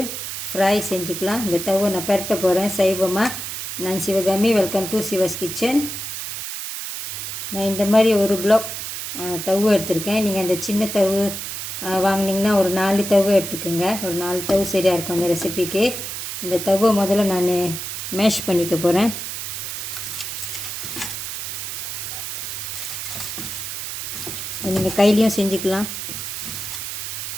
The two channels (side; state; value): right; noise; hiss, 6 dB below the sound